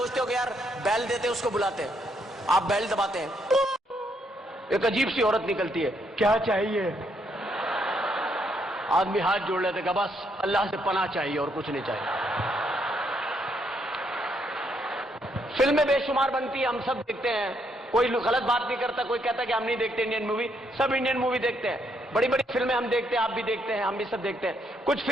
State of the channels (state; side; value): normal; both; correlation 0.74